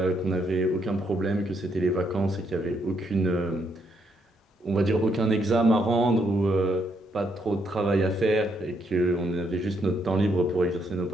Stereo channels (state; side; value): normal; both; correlation 0.75